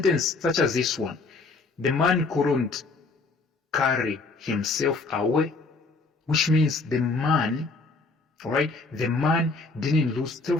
such as this one. The man couldn't carry himself away, which means the man, alright, the man didn't lose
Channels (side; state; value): right; quieter; 3.8 dB